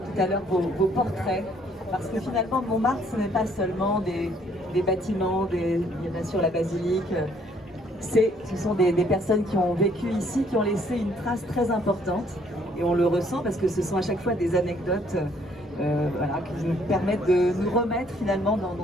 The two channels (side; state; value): both; normal; correlation 0.64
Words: à l'heure vos portraits, parce que finalement Montmartre, ce n'est pas seulement des bâtiments, bien sûr la basilique. Ce sont des personnes qui ont vécu ici, qui ont laissé une trace très importante. Et on le ressent parce que ce sont à chaque fois des anecdotes voilà, qui nous permettent de nous remettre finalement